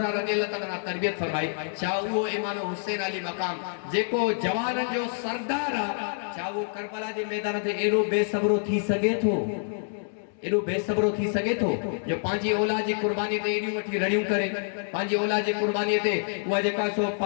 रज़ियल्लाहु तआला तरबियत फरमाई चा वो इमाम हुसैन अली मकाम जेको जवानन जो सरदार आ चा वो करबला जे मैदान ते एरो बेसब्रो थी सके थो एडो बेसब्रो थी सके थो जो पांजी औलाद जी कुर्बानी ते एडी वठी रड़ियूं करे पांजी औलाद जी कुर्बानी ते उहा जेका सो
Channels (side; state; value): right; silent; digital silence